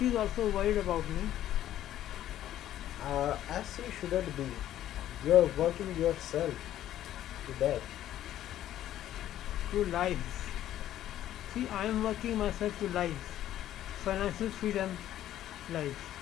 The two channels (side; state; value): right; quieter; 12.4 dB